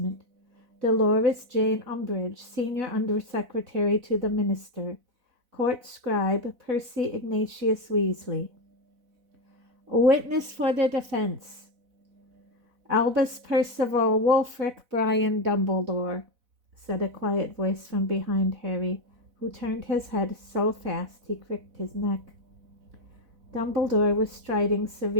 Dolores Jane Umbridge, Senior Undersecretary to the Minister; Court Scribe Percy Ignatius Weasley. A witness for the defense: Albus Percival Wulfric Brian Dumbledore," said a quiet voice from behind Harry, who turned his head so fast he cricked his neck. Dumbledore was striding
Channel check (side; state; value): left; late; 4.0 ms